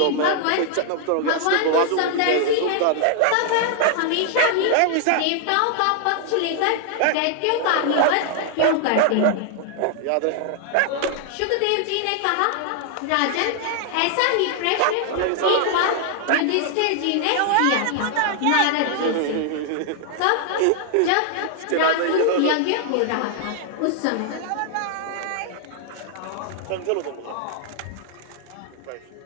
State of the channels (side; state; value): both; different; correlation 0.00